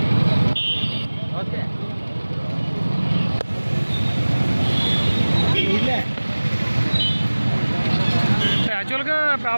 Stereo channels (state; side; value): inverted; both; correlation -1.00